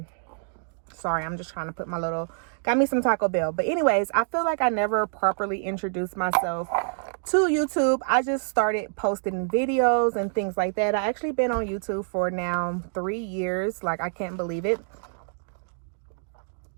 I'm just trying to put my little, got me some Taco Bell. But anyways, I feel like I never properly introduced myself to YouTube. I just started posting videos and things like that. I actually been on YouTube for now 3 years. Like, I can't believe it.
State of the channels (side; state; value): left; silent; digital silence